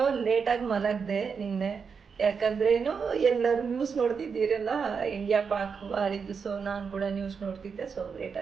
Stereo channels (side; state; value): left; quieter; 5.9 dB